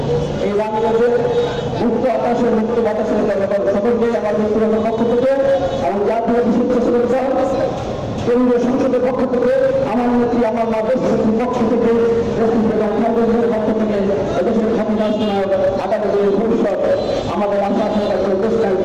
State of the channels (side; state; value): both; identical; correlation 1.00